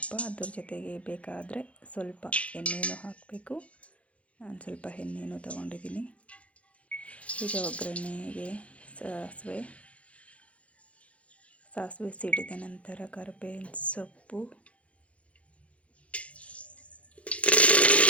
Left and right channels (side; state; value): right; late; 0.063 ms